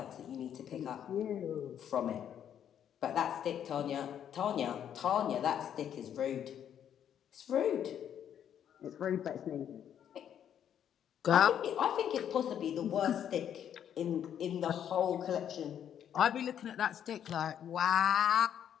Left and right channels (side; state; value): right; quieter; 9.4 dB